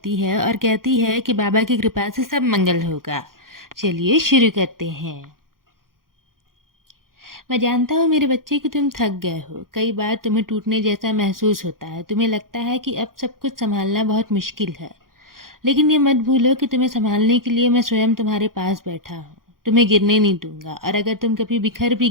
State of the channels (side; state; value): left; late; 0.91 ms